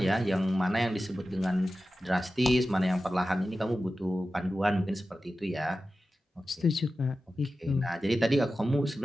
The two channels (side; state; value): both; normal; correlation 0.94